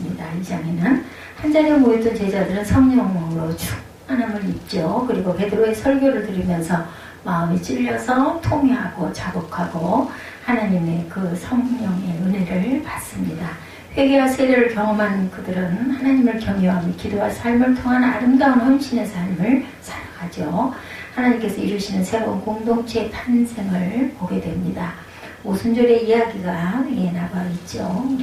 이 장에는 한자리에 모였던 제자들은 성령으로 충만함을 입죠. 그리고 베드로의 설교를 들으면서 마음이 찔려서 통회하고 자복하고 하나님의 그 성령의 은혜를 받습니다. 회개와 세례를 경험한 그들은 하나님을 경외하며 기도와 삶을 통한 아름다운 헌신의 삶을 살아가죠. 하나님께서 이루시는 새로운 공동체의 탄생을 보게 됩니다. 오순절의 이야기가 나와 있죠.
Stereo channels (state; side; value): identical; both; correlation 1.00